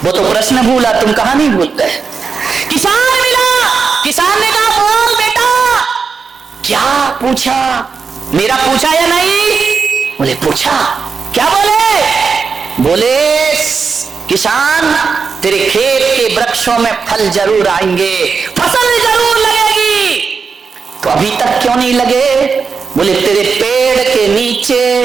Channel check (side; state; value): left; quieter; 5.4 dB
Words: वो तो प्रश्न भूला, तुम कहानी भूलते। किसान मिला। किसान ने कहा बोल बेटा। क्या पूछा? मेरा पूछा या नहीं? बोले पूछा। क्या बोले? बोले किसान, तेरे खेत के वृक्षों में फल जरूर आएंगे, फसल जरूर लगेगी। तो अभी तक क्यों नहीं लगे? बोले तेरे पेड़ के नीचे